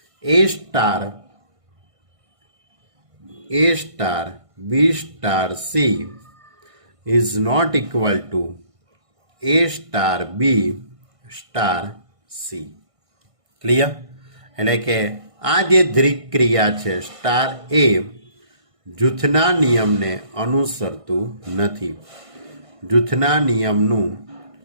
A star B star C is not equal to A star B star C. Clear? એટલે કે આ જે દ્વિક ક્રિયા છે સ્ટાર એ જૂથના નિયમને અનુસરતું નથી, જૂથના નિયમનું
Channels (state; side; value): late; left; 1.5 ms